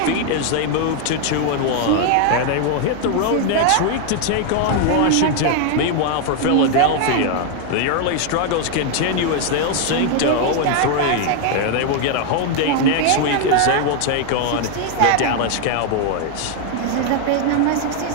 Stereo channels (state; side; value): different; both; correlation 0.01